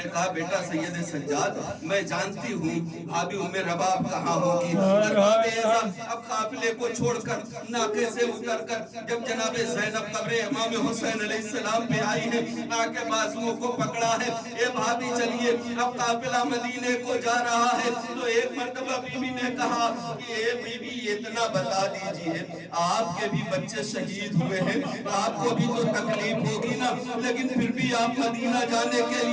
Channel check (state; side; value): identical; both; correlation 1.00